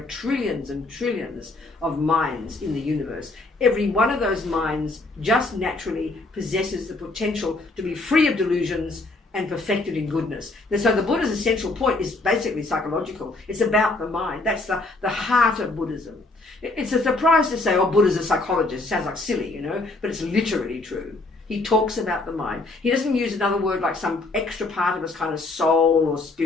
trillions and trillions of minds in the universe, every one of those minds just naturally possesses the potential to be free of delusions and perfected in goodness. And so the Buddha's essential point is basically psychological. It's about the mind. That's the heart of Buddhism. It's a surprise to say, oh, Buddha's a psychologist. It sounds like silly, you know, but it's literally true. He talks about the mind. He doesn't use another word like some extra part of us, kind of soul or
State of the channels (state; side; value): quieter; right; 3.2 dB